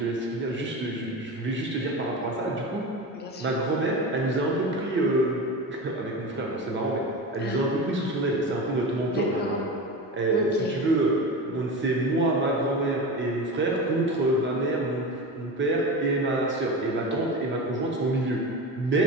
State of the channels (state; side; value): normal; both; correlation 0.26